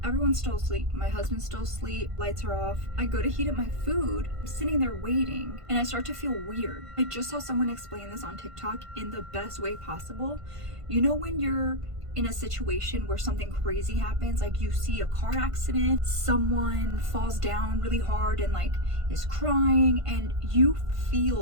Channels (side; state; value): left; late; 1.5 ms